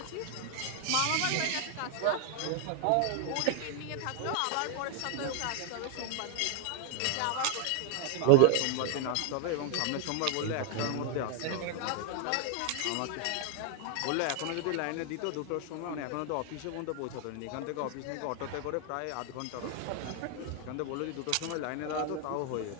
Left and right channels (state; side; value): different; both; correlation 0.00